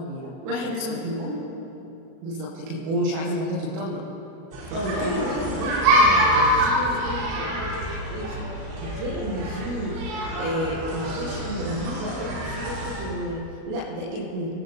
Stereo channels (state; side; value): late; left; 37 ms